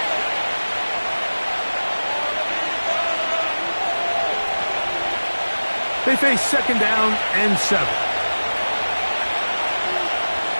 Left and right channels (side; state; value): both; inverted; correlation -1.00